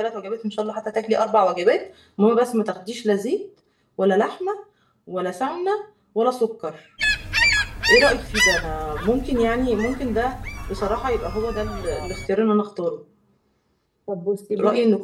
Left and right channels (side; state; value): both; identical; correlation 1.00